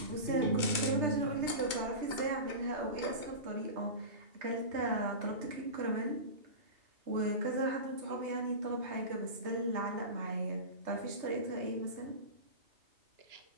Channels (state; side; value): late; left; 2.2 ms